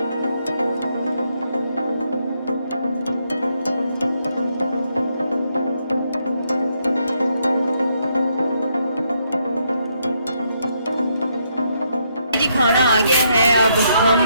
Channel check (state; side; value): inverted; both; correlation -0.76